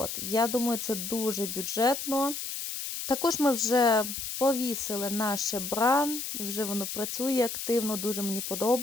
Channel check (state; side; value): noise; left; hiss, 5 dB below the sound